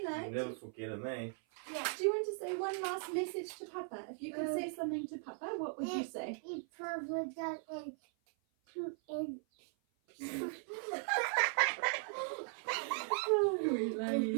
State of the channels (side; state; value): left; silent; 52 dB below the other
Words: You'll never forget him, eh? Yeah. do you want to say one last message to Papa? If you could say something to Papa, what would you say? He probably does and Oh,